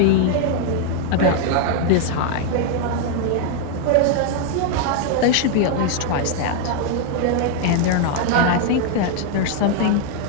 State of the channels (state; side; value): different; both; correlation 0.00